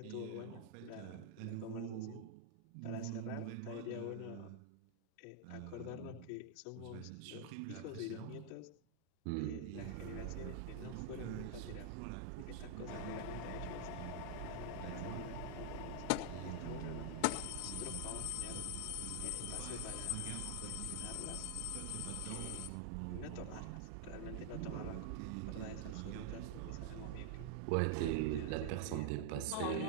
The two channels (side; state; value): both; different; correlation -0.01